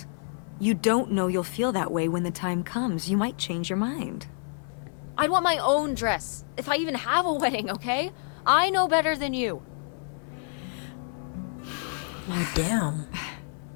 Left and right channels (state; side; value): silent; right; 55 dB below the other